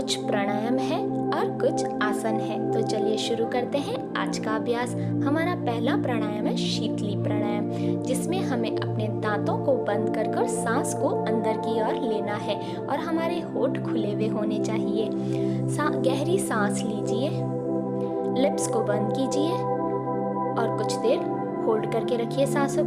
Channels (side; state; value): both; identical; correlation 1.00